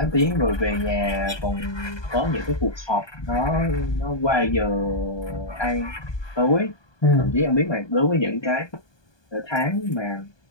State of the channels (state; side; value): late; right; 1.2 ms